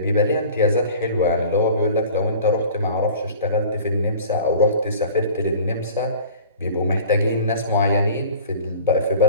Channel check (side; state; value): both; inverted; correlation -0.44